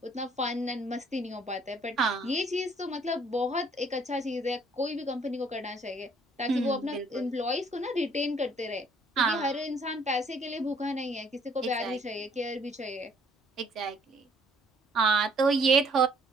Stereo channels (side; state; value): both; normal; correlation 0.61